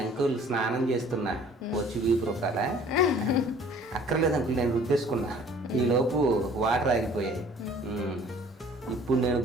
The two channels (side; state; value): both; normal; correlation 0.52